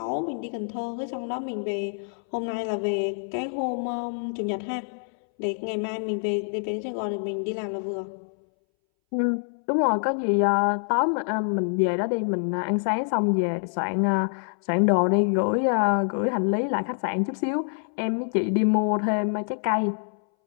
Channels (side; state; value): right; silent; 61 dB below the other